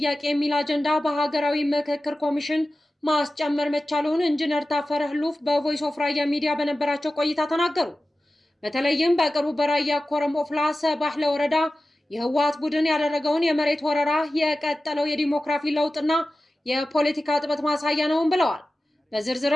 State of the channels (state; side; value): normal; both; correlation 0.95